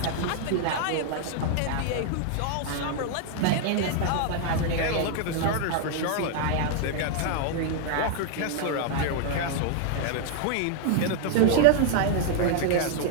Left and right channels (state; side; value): different; both; correlation 0.00